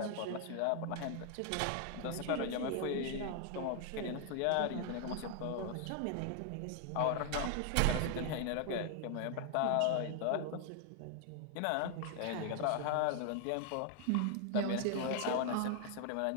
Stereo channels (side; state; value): both; different; correlation 0.00